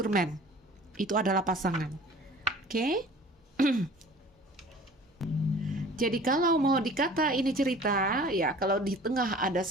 man. Itu adalah pasangan. Oke? Jadi kalau mau dikata ini cerita, ya kalau di tengah ada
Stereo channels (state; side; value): normal; both; correlation 0.46